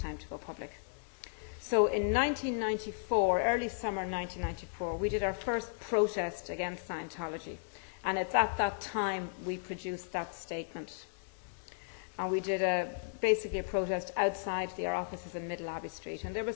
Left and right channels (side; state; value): right; silent; digital silence